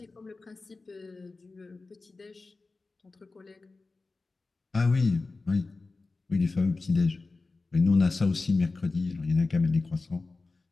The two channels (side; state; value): right; quieter; 3.6 dB